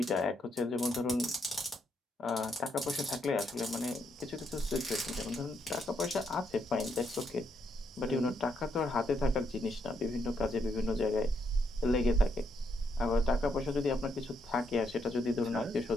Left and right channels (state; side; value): normal; both; correlation 0.76